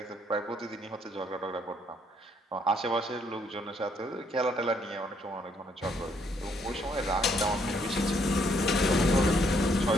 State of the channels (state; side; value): normal; both; correlation 0.69